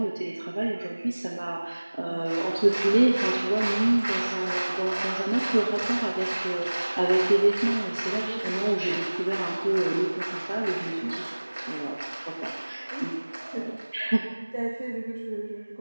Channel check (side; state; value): both; inverted; correlation -1.00